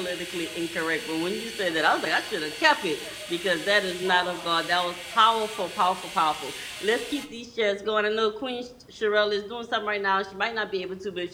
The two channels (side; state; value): both; identical; correlation 1.00